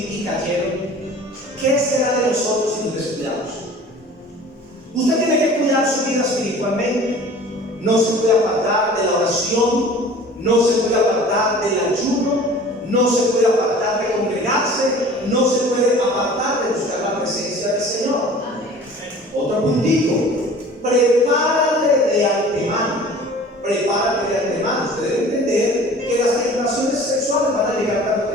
y cayeron, ¿qué será de nosotros si nos descuidamos? Usted tiene que cuidar su vida espiritualmente. No se puede apartar de la oración, no se puede apartar del ayuno, no se puede apartar de congregarse, no se puede apartar de buscar la presencia del Señor. Otro puntito: prepárate de antemano. Prepárate de antemano. Usted debe entender que las tentaciones sexuales van a llegar tarde o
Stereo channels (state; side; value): normal; both; correlation 0.44